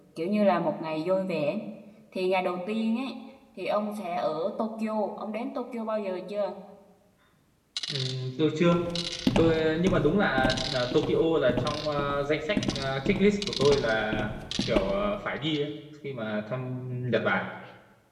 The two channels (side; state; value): both; identical; correlation 1.00